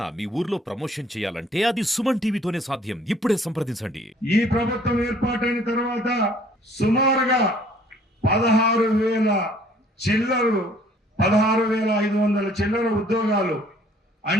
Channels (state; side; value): normal; both; correlation 0.57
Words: మీ ఊర్లో promotion చేయాలంటే అది సుమన్ టీవీతోనే సాధ్యం. ఇప్పుడే సంప్రదించండి. ఈ ప్రభుత్వం ఏర్పాటైన తర్వాత సుమారుగా 16,000 చిల్లరు 16,500 చిల్లర ఉద్యోగాలు